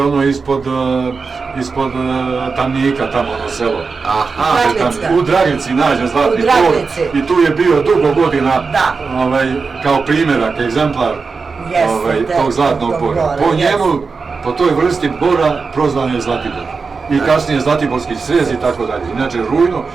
ono ispod Tamnika, tamo ono selo. U Dragici nađen zlatni bor i tu je bio dugo godina kao primjerak, egzemplar tog zlatnog bora. Po njemu, po toj vrsti bora prozvan je Zlatibor. I kasnije Zlatiborski srez i tako dalje. Inače Rujno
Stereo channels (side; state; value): left; quieter; 4.7 dB